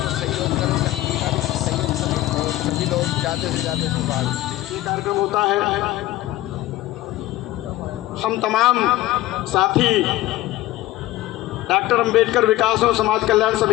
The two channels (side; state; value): right; quieter; 16.3 dB